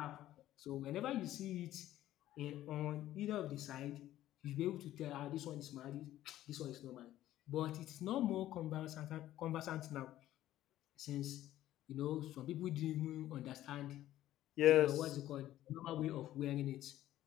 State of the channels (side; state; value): right; quieter; 13.7 dB